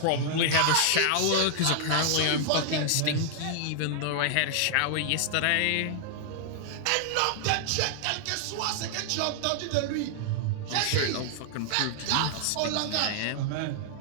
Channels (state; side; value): different; both; correlation -0.01